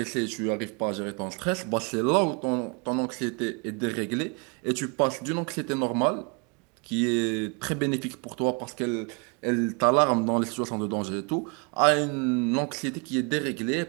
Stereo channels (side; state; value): left; quieter; 33.8 dB